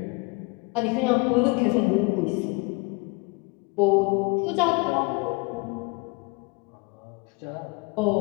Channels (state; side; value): quieter; right; 28.3 dB